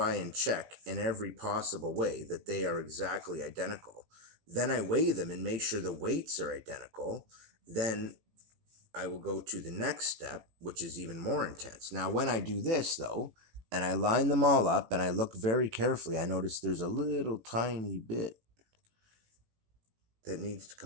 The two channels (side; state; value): left; late; 18 ms